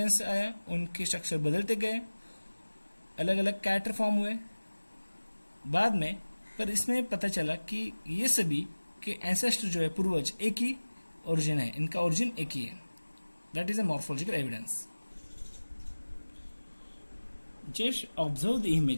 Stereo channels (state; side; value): inverted; both; correlation -1.00